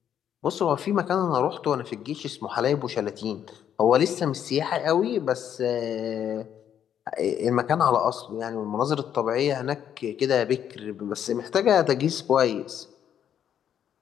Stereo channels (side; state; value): right; quieter; 9.4 dB